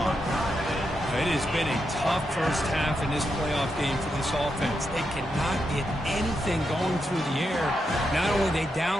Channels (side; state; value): both; normal; correlation 0.84